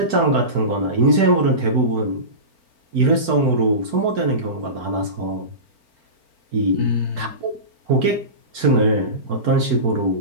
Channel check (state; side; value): late; left; 4.4 ms